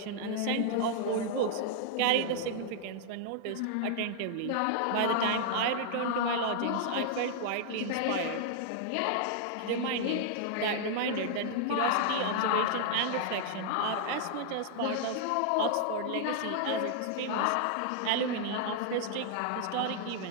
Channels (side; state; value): both; different; correlation -0.01